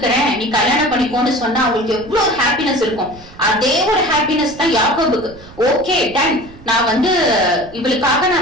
நீ கல்யாணம் பண்ணிக்கோன்னு சொன்னா அவங்களுக்கு எவ்வளவு ஹாப்பினஸ் இருக்கும். அதே ஒரு ஹாப்பினஸ் தான் யாக்கோபுக்கு. ஓகே டன், நான் இவளுக்காக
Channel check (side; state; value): right; noise; rumble, 20 dB below the sound